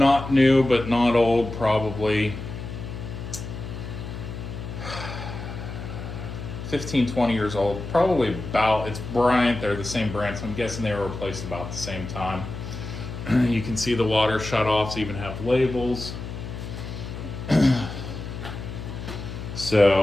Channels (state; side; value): noise; left; hum, 8 dB below the sound